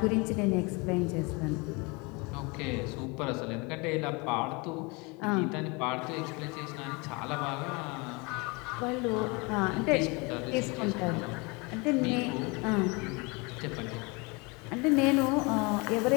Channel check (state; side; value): quieter; right; 28.2 dB